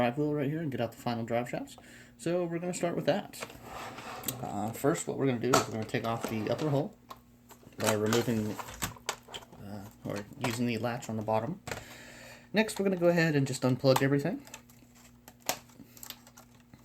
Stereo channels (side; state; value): both; identical; correlation 1.00